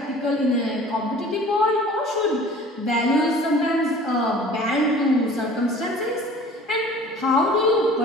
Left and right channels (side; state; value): both; normal; correlation 0.46